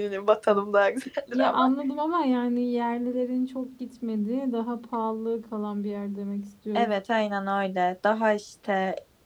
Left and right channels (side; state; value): both; identical; correlation 1.00